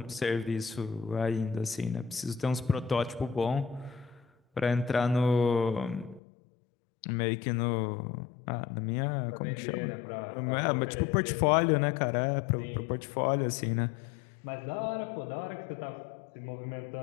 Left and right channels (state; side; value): drops out; right; at 6.2 s